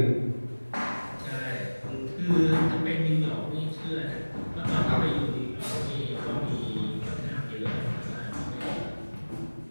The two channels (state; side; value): inverted; both; correlation -1.00